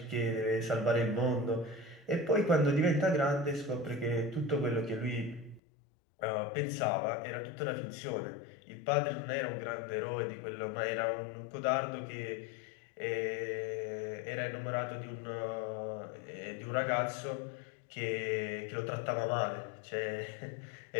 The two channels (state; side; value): drops out; right; at 5.6 s